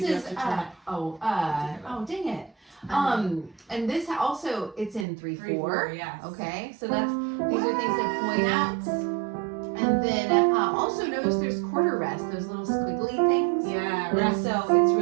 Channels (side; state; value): left; drops out; at 5.1 s